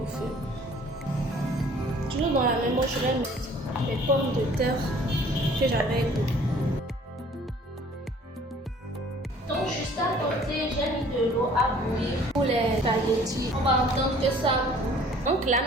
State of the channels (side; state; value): both; normal; correlation 0.53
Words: feu. Toujours dans la même eau, je vais mettre les pommes de terre que j'avais coupées. Donc juste à côté, j'ai mis de l'eau à bouillir pour les spaghettis. On va entendre que ça bout. Donc là